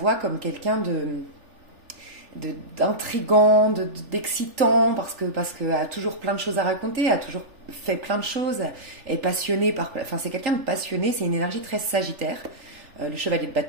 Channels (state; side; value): late; left; 3.4 ms